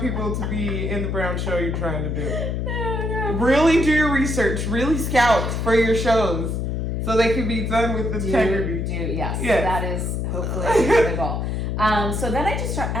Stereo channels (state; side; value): noise; left; hum, 1 dB below the sound